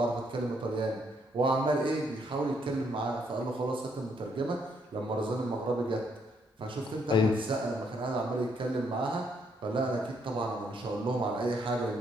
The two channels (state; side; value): normal; both; correlation 0.72